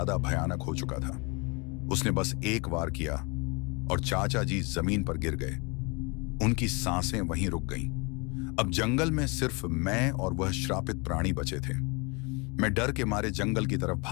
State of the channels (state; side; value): quieter; right; 30.2 dB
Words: भयानक हो चुका था। उसने बस एक वार किया और चाचा जी जमीन पर गिर गए। उनकी सांसें वहीं रुक गईं। अब जंगल में सिर्फ मैं और वह श्रापित प्राणी बचे थे। मैं डर के मारे जंगल की तरफ